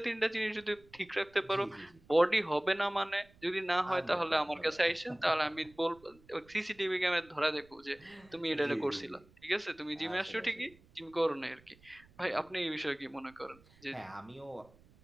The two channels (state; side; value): noise; right; rumble, 27 dB below the sound